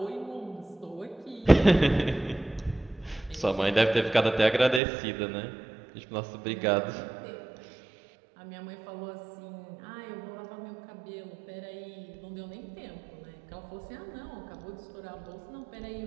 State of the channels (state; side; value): drops out; left; at 4.8 s